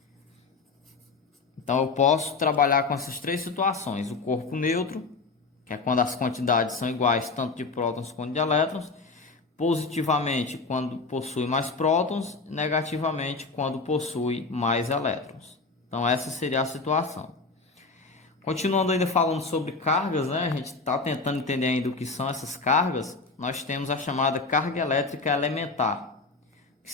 Então eu posso trabalhar com essas três situações: o corpo neutro, que é quando as quantidades são iguais tanto de prótons quanto de elétrons, positivamente quando possui mais prótons, negativamente quando possui mais elétrons. Então essa seria a situação. Continuando ainda falando sobre cargas, né? A gente está tentando entender ainda o que são essas cargas. Nós temos a chamada carga elétrica elementar. O que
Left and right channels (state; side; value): quieter; right; 4.0 dB